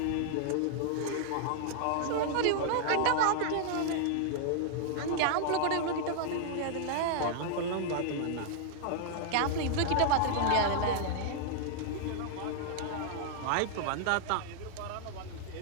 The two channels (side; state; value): both; different; correlation -0.01